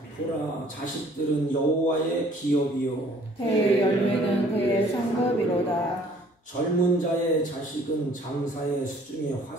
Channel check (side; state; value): both; normal; correlation 0.57